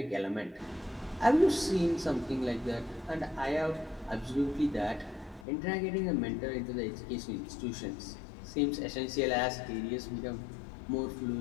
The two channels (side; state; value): right; drops out; at 5.5 s